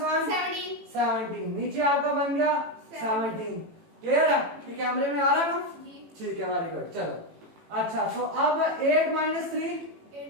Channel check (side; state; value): left; late; 18 ms